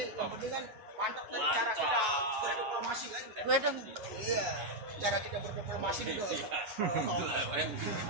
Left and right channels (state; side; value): late; left; 9.3 ms